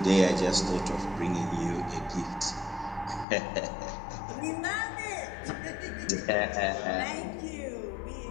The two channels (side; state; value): right; drops out; at 3.2 s